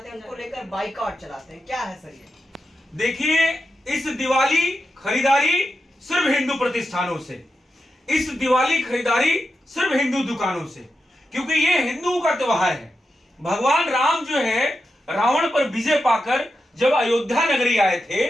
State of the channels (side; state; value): both; normal; correlation 0.88